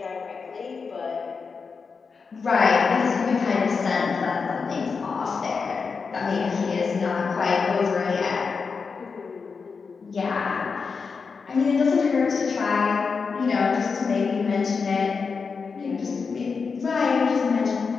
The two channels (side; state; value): right; quieter; 5.2 dB